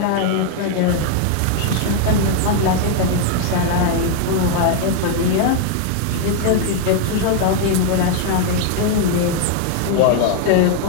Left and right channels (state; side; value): different; both; correlation 0.00